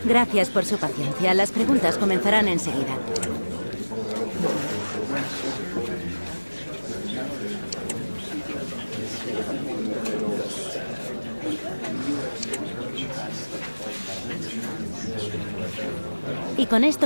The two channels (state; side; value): inverted; both; correlation -1.00